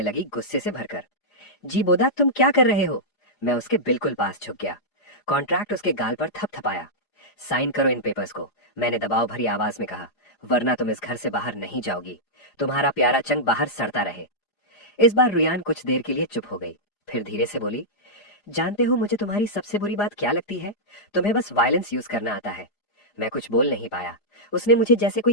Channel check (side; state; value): right; late; 4.9 ms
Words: लगी, गुस्से से भरकर। जी बोदा, तुम क्या कर रहे हो? मैं उसके बिल्कुल पास झुक गया। कॉन्ट्रैक्ट उसके गाल पर थपथपाया। साइन करो इन पेपर्स को, मैंने दबाव भरी आवाज में कहा, वरना तुम इस घर से बाहर नहीं जाओगी। तुम्हारा प्यारा चंग बाहर सड़ता रहे। इस बार रुयान कुछ देर के लिए चुप हो गई, फिर धीरे से बोली, जानते हो मुझे तुम्हारी सबसे बुरी बात क्या लगती है? तुम्हें बस वायलेंस यूज करना आता है। मैं कुछ बोल नहीं पाया। उसने मुझे जैसे